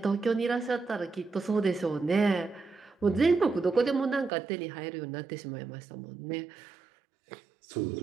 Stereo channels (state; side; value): drops out; left; at 4.3 s